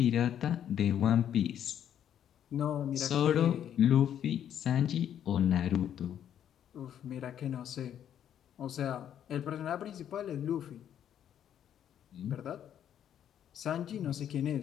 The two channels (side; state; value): right; quieter; 9.9 dB